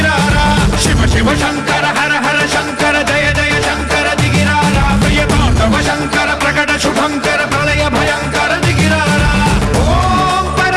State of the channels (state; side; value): identical; both; correlation 1.00